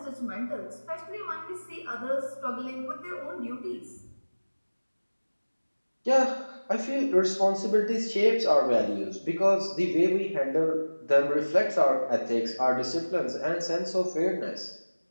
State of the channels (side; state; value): both; inverted; correlation -1.00